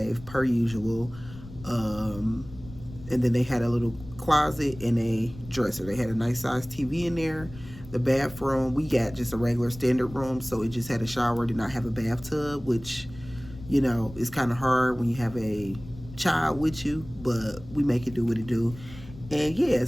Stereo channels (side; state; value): left; noise; rumble, 16 dB below the sound